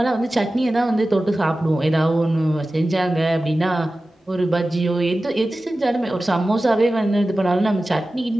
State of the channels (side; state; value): both; normal; correlation 0.95